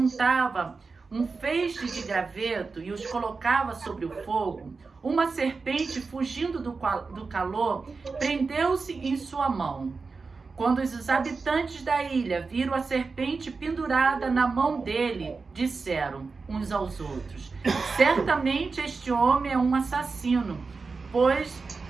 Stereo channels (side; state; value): left; quieter; 4.4 dB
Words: um feixe de graveto e os colocava sobre o fogo, uma serpente, fugindo do calor, prendeu-se em sua mão. Quando os habitantes da ilha viram a serpente pendurada na mão dele, disseram uns aos outros: Certamente este homem é um assassino, pois,